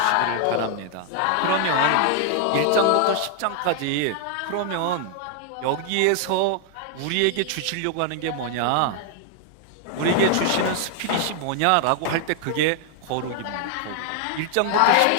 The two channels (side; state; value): both; different; correlation 0.00